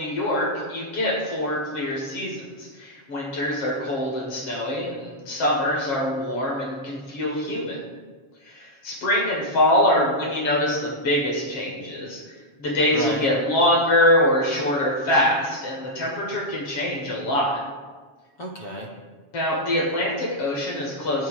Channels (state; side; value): late; right; 7.3 ms